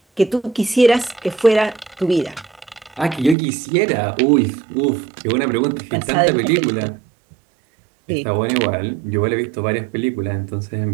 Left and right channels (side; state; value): left; drops out; at 3.4 s